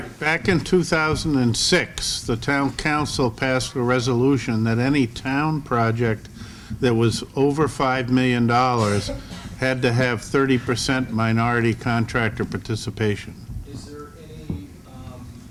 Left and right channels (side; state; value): both; identical; correlation 1.00